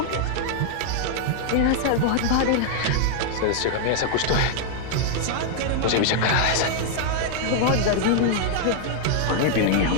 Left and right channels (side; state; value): both; different; correlation -0.01